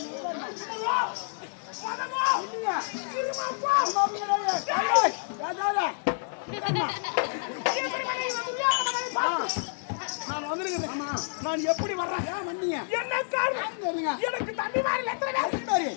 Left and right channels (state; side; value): silent; right; digital silence